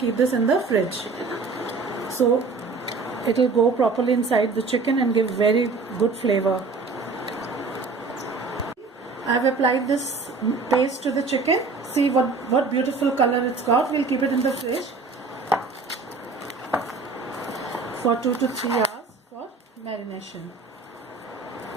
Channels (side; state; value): left; quieter; 4.2 dB